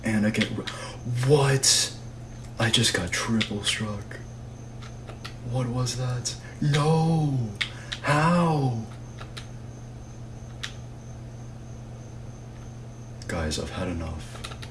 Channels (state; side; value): identical; both; correlation 1.00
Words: And I get... What? I just got triple struck. What was that? No! How? Guys, I've had enough.